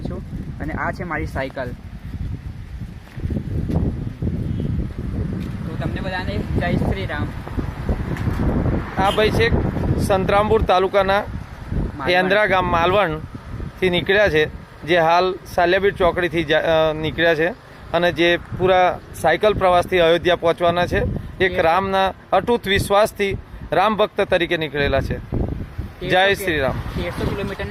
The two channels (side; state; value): both; identical; correlation 1.00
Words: છું. અને આ છે મારી સાયકલ. તો તમને બધાને જય શ્રી રામ. આ ભાઈ છે સંતરામપુર તાલુકાના એન્દ્રા ગામ માલવણથી નીકળ્યા છે, જે હાલ સાલિયાબીડ ચોકડીથી નીકળ્યા છે અને જે પૂરા સાયકલ પ્રવાસથી અયોધ્યા પહોંચવાના છે. એક રામના અટૂટ વિશ્વાસથી રામ ભક્ત તરીકે નીકળેલા છે. જય શ્રી રામ. 1300